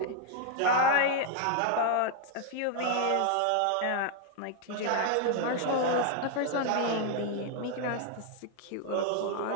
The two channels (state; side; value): different; both; correlation 0.00